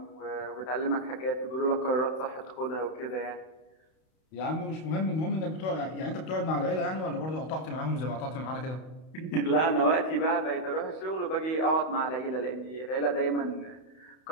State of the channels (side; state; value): right; late; 32 ms